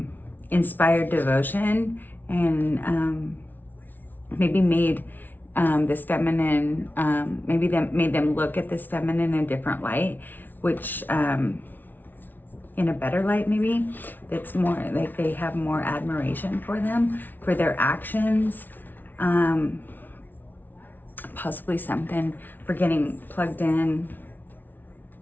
inspired devotion, and maybe made this feminine, made them look at this feminine in a different light, which in a better light, maybe, that's more like they have more admiration for them, for their actions, possibly something for getting plugged in,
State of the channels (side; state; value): right; late; 0.087 ms